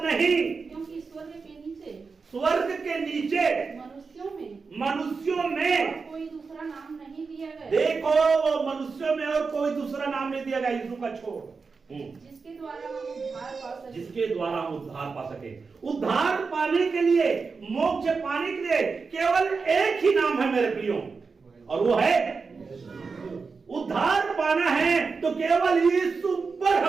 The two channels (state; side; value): quieter; left; 4.8 dB